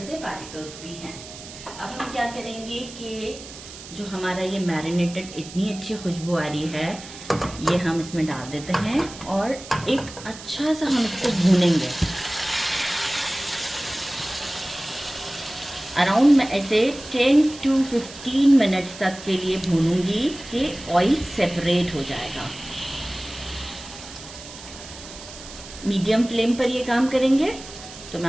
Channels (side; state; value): right; noise; hiss, 15 dB below the sound